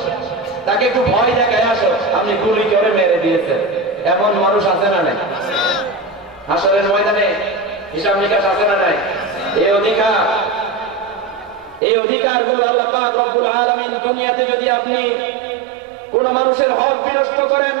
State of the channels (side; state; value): left; drops out; at 11.8 s